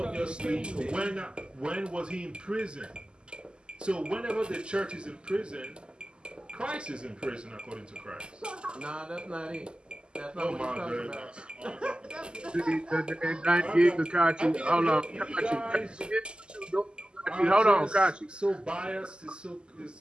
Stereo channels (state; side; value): late; left; 0.049 ms